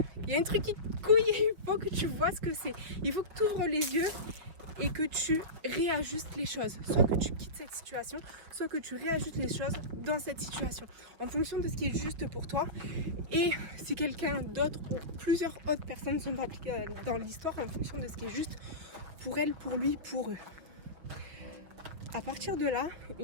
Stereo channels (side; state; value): left; late; 6.0 ms